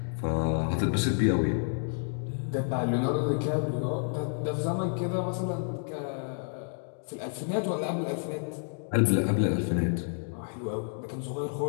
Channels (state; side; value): silent; right; 58 dB below the other